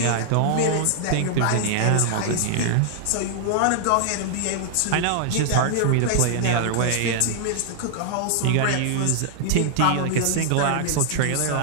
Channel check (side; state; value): both; different; correlation -0.01